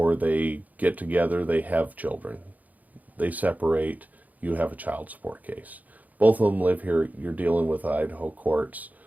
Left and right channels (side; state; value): left; late; 0.079 ms